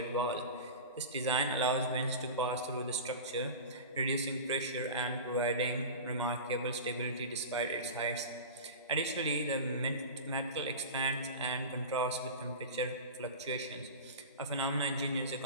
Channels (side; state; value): both; inverted; correlation -0.30